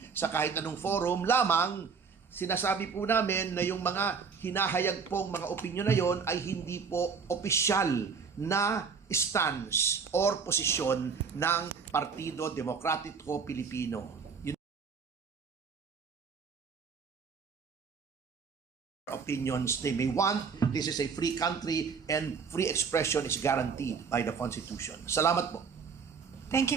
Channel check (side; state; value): left; quieter; 5.7 dB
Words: sa kahit anong forum, lamang sinasabi po namin na yung mga hinahayag pong mga opinyon na yon ay hindi po opisyal na stance or posisyon ng Partido Demokratiko Pilipino. Opinions they may want. This is a free country and free expression is guaranteed by the Constitution. Salamat po. Thank